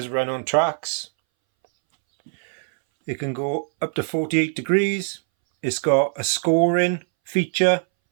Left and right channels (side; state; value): left; silent; 63 dB below the other